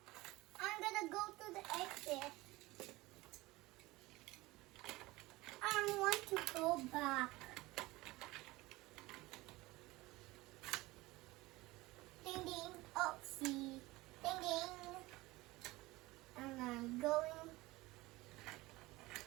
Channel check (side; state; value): left; quieter; 20.3 dB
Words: I'm gonna go to the exit. I want to go back. Ding ding. Oh, see. Ding ding. And I'm going.